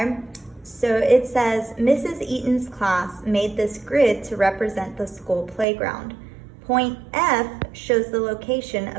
so it says, Mrs. Eaton's class made this grid to represent the school playground. Point F shows the location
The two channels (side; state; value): left; drops out; at 5.7 s